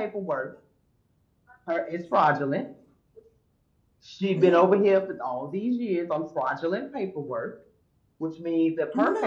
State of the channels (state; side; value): identical; both; correlation 1.00